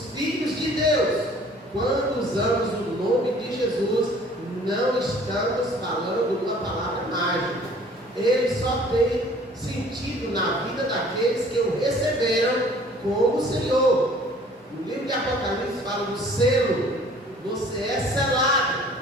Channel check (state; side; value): normal; both; correlation 0.52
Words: filhos de Deus. Quando usamos o nome de Jesus, não estamos falando uma palavra mágica. Ele só tem sentido na vida daqueles que o receberam como Senhor. No livro de Apocalipse fala do selo. Você é selado.